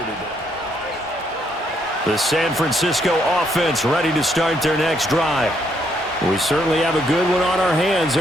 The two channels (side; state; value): both; normal; correlation 0.73